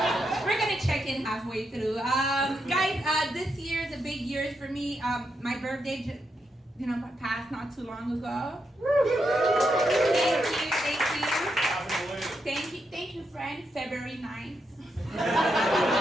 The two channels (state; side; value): normal; both; correlation 0.83